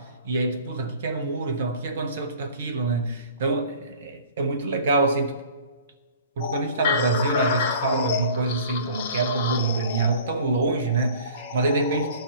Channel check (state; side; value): inverted; both; correlation -0.47